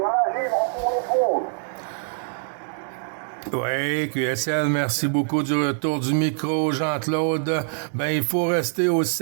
Gilles, on retrouve. Oui, QSL, merci beaucoup du retour du micro, Jean-Claude. Ben, il faut rester au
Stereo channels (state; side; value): silent; left; digital silence